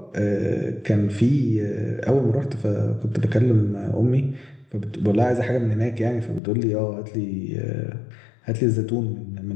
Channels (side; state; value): right; drops out; at 6.4 s